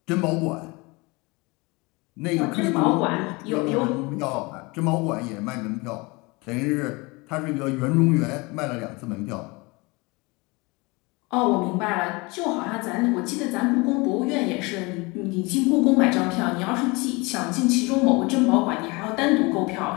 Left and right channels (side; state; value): right; quieter; 25.9 dB